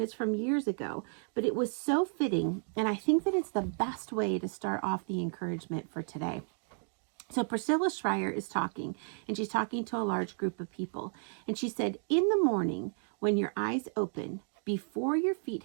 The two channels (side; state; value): left; silent; 56 dB below the other